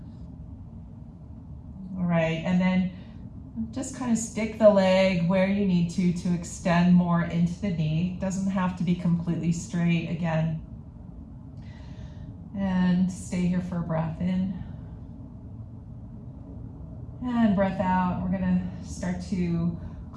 All right, and then just kind of stick the leg where you need to extend more into the knee. Doesn't have to be completely straight again. And stay here for a breath in. And breath out. We're going to start to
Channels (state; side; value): identical; both; correlation 1.00